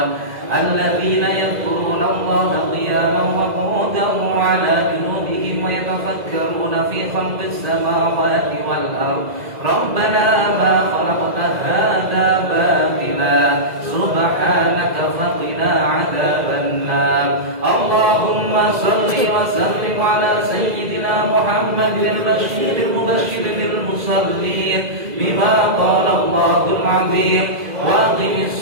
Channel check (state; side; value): late; left; 2.0 ms